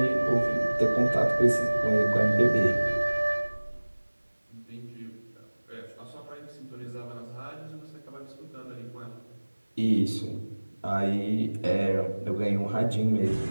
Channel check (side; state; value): both; inverted; correlation -1.00